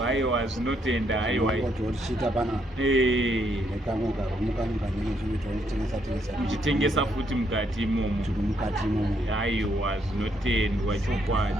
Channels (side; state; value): both; normal; correlation 0.74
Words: aiwa zvinotenda aiwa tichiita pana muchitengesa futi mukati imomo aiwa zvinotendwa